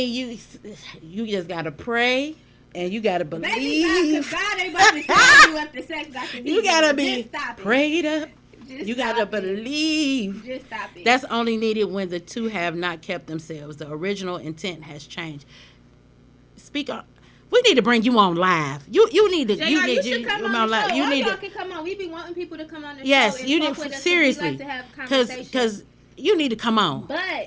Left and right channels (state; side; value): identical; both; correlation 1.00